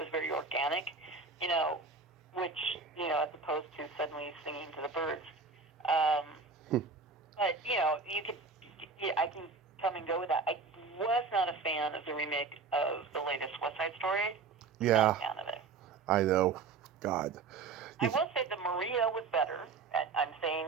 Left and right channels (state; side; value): quieter; left; 4.6 dB